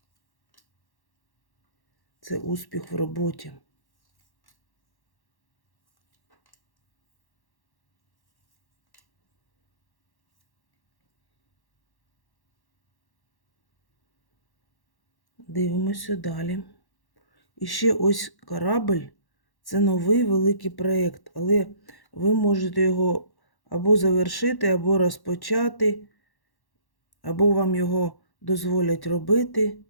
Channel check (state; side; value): late; right; 1.1 ms